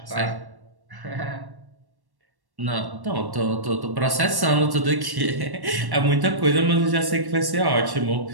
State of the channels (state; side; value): late; left; 1.1 ms